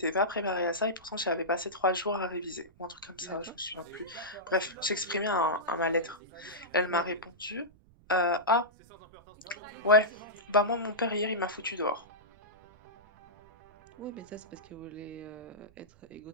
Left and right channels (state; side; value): noise; right; rumble, 26 dB below the sound